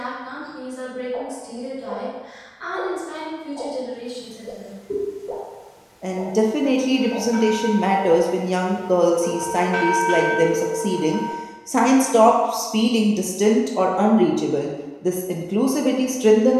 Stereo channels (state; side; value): identical; both; correlation 1.00